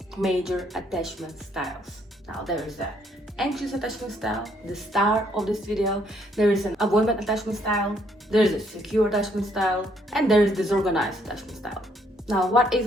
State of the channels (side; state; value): both; normal; correlation 0.69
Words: major attachment styles. Now there is the anxious attachment style, the star of this video. There is an avoidant attachment style, there is a secure attachment style, and there is disorganized attachment style. Now, what is